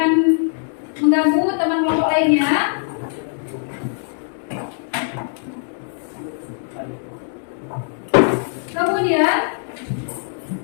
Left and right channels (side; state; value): right; silent; digital silence